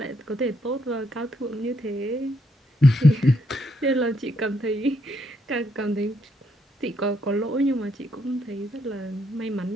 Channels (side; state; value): both; normal; correlation 0.75